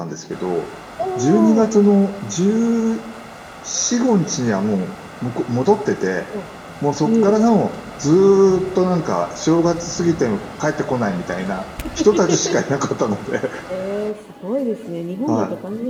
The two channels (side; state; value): both; identical; correlation 1.00